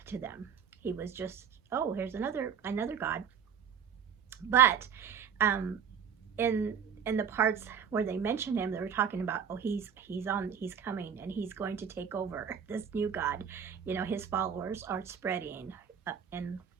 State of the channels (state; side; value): quieter; left; 7.6 dB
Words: to them. He was just, oh, here's another god. But in the parts where they mentioned him, they were talking about, oh, he's coming, and he's going to take over this new god. You know, his followers are spreading, and